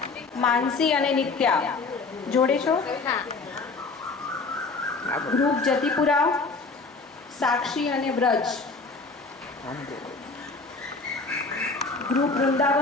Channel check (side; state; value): right; quieter; 4.0 dB